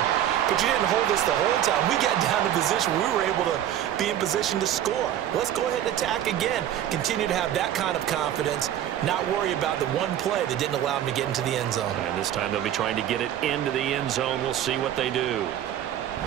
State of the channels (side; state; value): left; quieter; 11.2 dB